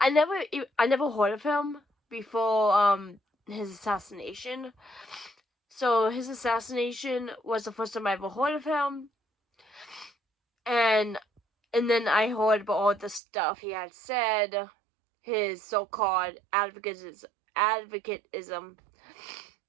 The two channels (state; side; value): drops out; left; at 13.2 s